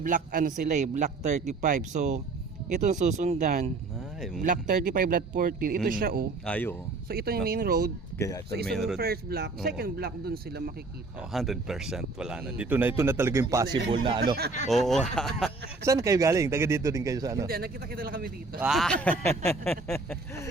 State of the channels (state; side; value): quieter; left; 3.6 dB